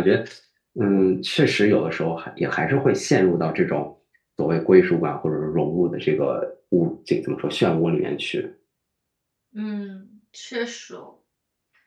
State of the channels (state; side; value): identical; both; correlation 1.00